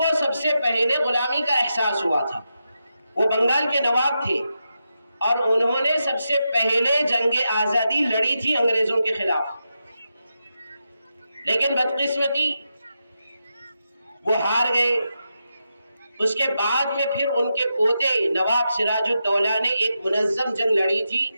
سب سے پہلے غلامی کا احساس ہوا تھا. وہ بنگال کے نواب تھے اور انہوں نے سب سے پہلے جنگ آزادی لڑی تھی انگریزوں کے خلاف. لیکن بدقسمتی وہ ہار گئے. اس کے بعد میں پھر ان کے پوتے نواب سراج الدولہ نے ایک منظم جنگ لڑی تھی،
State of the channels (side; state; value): both; inverted; correlation -0.87